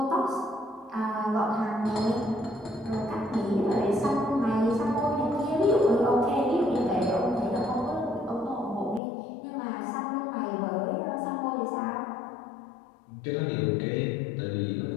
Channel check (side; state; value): right; drops out; at 9.0 s